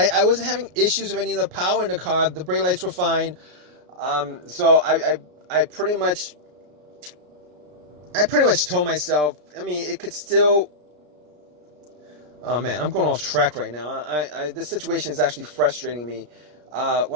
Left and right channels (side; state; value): left; late; 33 ms